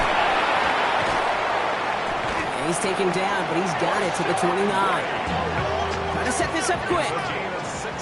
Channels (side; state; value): both; identical; correlation 1.00